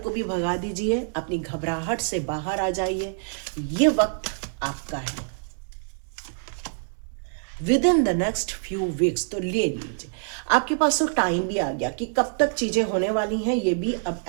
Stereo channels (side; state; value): left; silent; digital silence